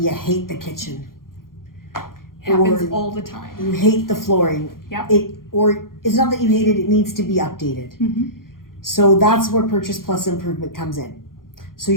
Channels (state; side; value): late; right; 0.91 ms